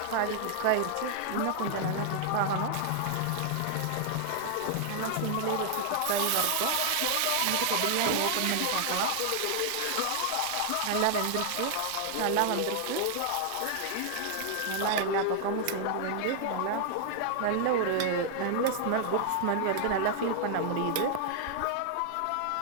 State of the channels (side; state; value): both; different; correlation 0.00